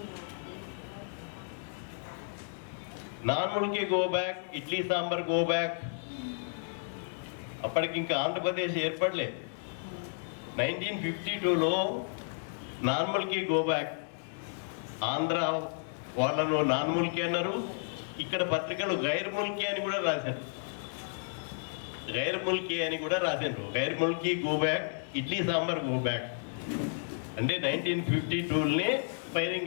నార్మల్కి go back, idli sambar go back. అప్పటికి ఇంకా ఆంధ్రప్రదేశ్ ఏర్పడలే. 1952లో నార్మల్కి గో బ్యాక్. ఆంధ్ర వాళ్ళను నార్మల్కి అన్నారు. ఇక్కడ పత్రికలు గైర్ ముల్కీ అని కూడా రాశారు. గైర్ ముల్కీ అని కూడా రాశారు. Gair Mulki go back, idli sambar go back. అంటే 1952లోనే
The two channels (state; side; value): silent; right; digital silence